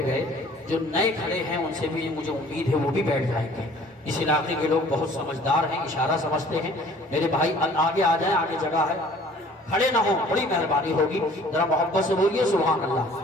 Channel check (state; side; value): normal; both; correlation 0.52